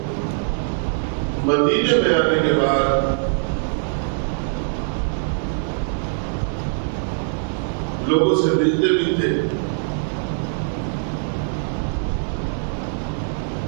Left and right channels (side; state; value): left; silent; 64 dB below the other